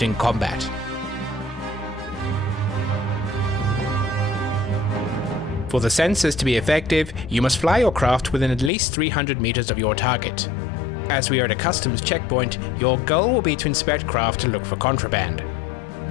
in combat. For the sensors to be effective, you must fly your craft within at least 300 meters of your target. As we are at a customs checkpoint, your goal will be to inspect craft to look for contraband.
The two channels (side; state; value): right; drops out; at 8.7 s